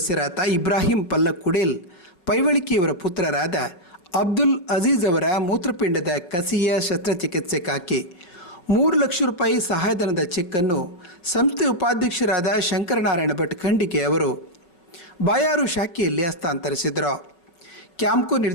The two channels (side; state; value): right; late; 5.6 ms